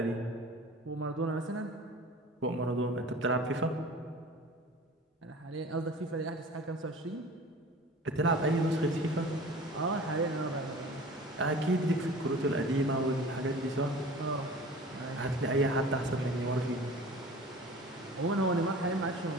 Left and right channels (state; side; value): normal; both; correlation 0.41